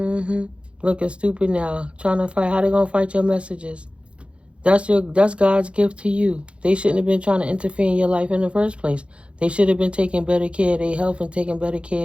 stupid now. Trying to fight. How they going to fight your messages? That's God's gift to you. They shouldn't have been trying to interfere in your life in the first place. They should have been taking better care of their health and taking better care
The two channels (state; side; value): late; left; 0.059 ms